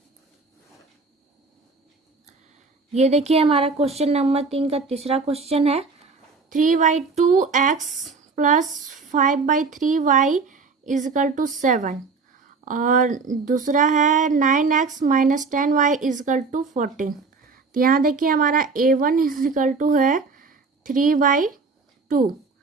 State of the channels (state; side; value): quieter; left; 4.5 dB